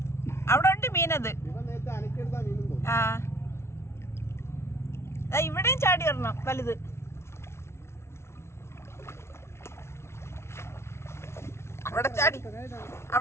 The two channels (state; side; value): late; right; 0.13 ms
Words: അവിടെ ഉണ്ട് മീനത്. ആ ഇവിടെയും ചാടി വരണം വലുത്.